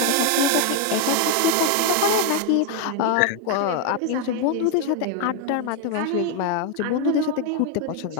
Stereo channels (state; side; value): different; both; correlation 0.01